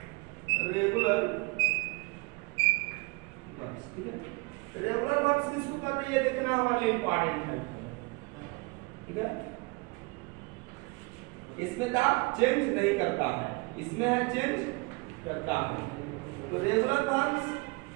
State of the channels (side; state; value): left; quieter; 27.7 dB